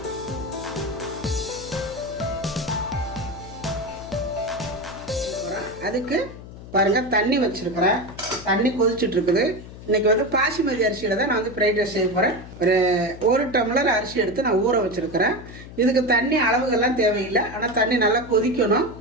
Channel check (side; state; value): left; noise; hum, 15 dB below the sound